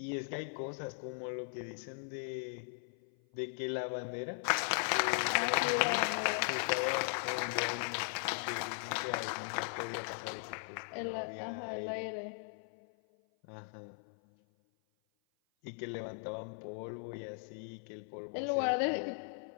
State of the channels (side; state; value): right; silent; 52 dB below the other